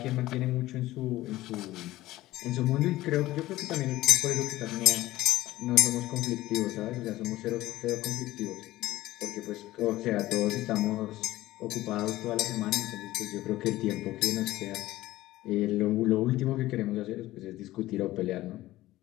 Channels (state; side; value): quieter; right; 16.5 dB